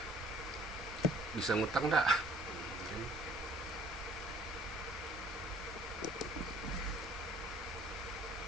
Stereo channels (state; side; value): normal; both; correlation 0.57